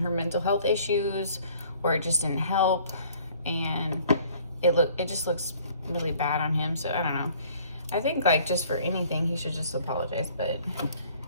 her mental health issues, or it just didn't help, and it just looks really bad on him. So I don't know, I think, like, just for anything he should just apologize, but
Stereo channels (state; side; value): inverted; both; correlation -0.55